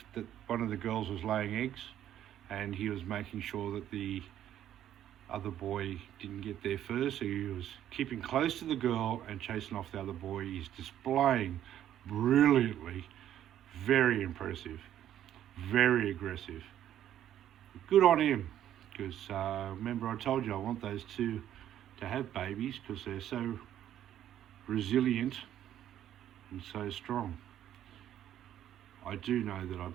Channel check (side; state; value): left; quieter; 11.2 dB